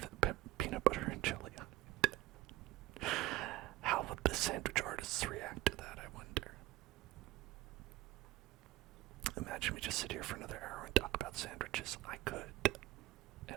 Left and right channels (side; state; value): left; quieter; 17.0 dB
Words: peanut butter and jelly on it? How would the sandwich artists react to that, I wonder? Imagine we just sit here for another hour and talk about sandwiches. I could,